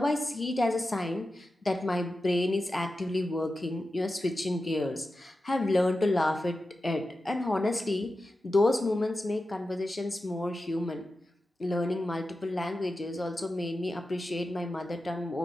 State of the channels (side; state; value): both; normal; correlation 0.92